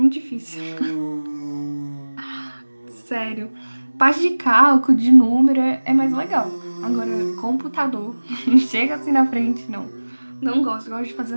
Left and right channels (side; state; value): both; inverted; correlation -1.00